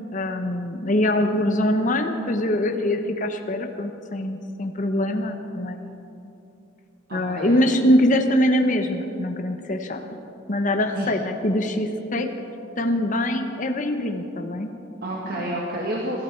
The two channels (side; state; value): both; normal; correlation 0.56